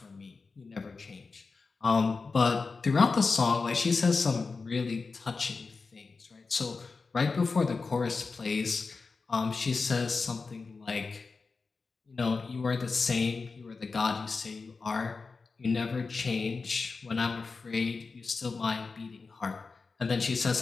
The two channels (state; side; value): quieter; right; 4.4 dB